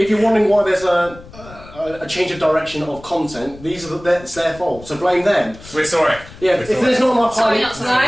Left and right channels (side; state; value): left; noise; rumble, 19 dB below the sound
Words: you're wondering why there's a change of direction of content, it's their fault. So blame them. We're sorry. Yeah, if there's not enough Sorry, Harley... not No,